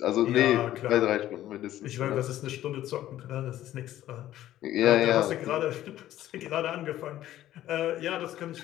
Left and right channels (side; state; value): right; quieter; 13.4 dB